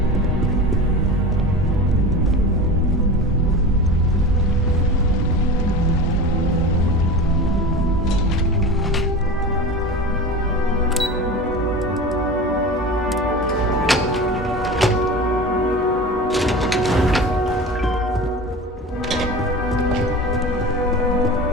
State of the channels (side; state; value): both; normal; correlation 0.31